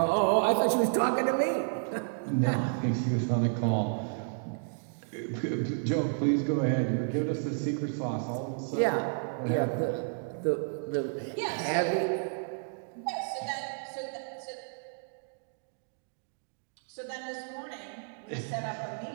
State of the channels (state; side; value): silent; left; digital silence